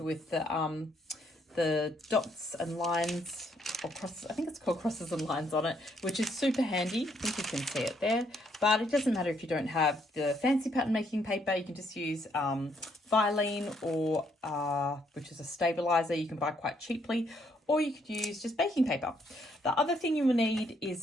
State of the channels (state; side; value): normal; both; correlation 0.71